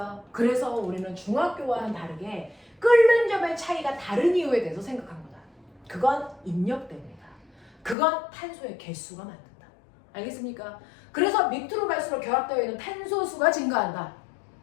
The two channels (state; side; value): drops out; right; at 8.0 s